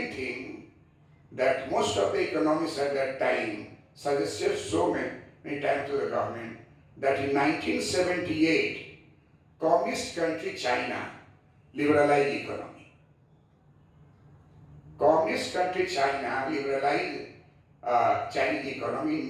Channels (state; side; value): identical; both; correlation 1.00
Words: thing that most of the economists at that time suggested so many times to the government, that in 1978, communist country China liberalized economy. Communist country China liberalized Chinese economy